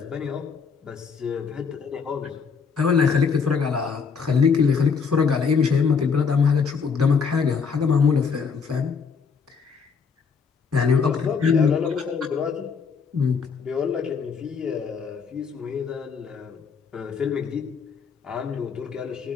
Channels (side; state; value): right; quieter; 5.8 dB